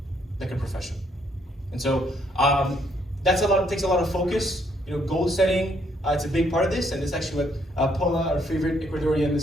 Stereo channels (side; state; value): both; normal; correlation 0.70